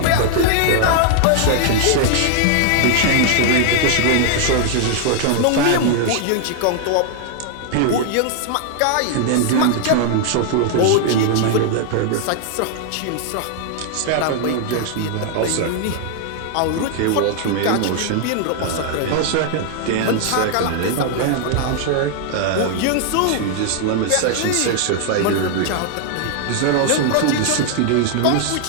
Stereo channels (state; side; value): different; both; correlation 0.00